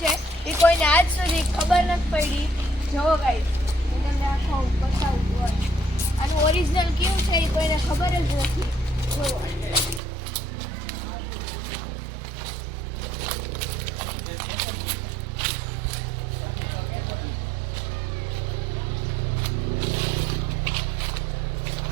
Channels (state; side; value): drops out; left; at 10.0 s